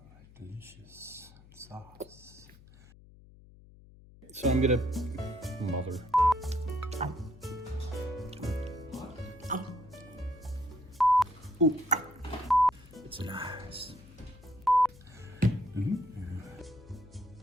Delicious sauce. So I'm gonna, mother. Ooh, it's nice.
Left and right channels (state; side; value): noise; left; hum, 22 dB below the sound